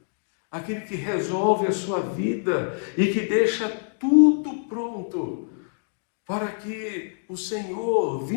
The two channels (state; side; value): silent; right; digital silence